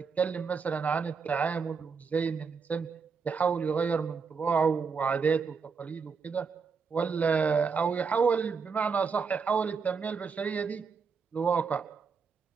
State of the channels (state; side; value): quieter; left; 5.5 dB